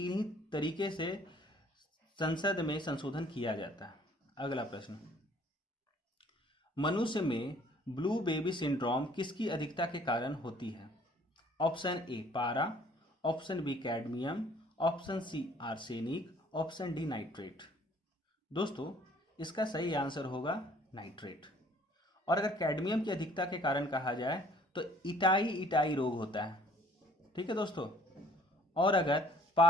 ही तरीके से संसद में संशोधन किया जाता है। अगला प्रश्न, मनुष्य में ब्लू बेबी सिंड्रोम किसकी अधिकता के कारण होती है? ऑप्शन ए पारा, option B cadmium, option C arsenic, option D nitrate. दोस्तों इसका सही आंसर होगा नाइट्रेट। और अगर कैडमियम की अधिकता के कारण कहा जाए तो इटाई रोग होता है। ठीक है दोस्तों, और अगर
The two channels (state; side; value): normal; both; correlation 0.57